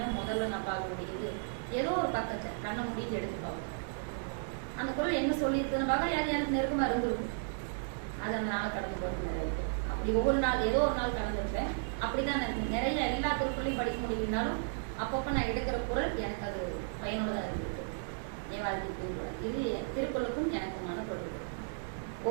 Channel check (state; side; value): silent; left; digital silence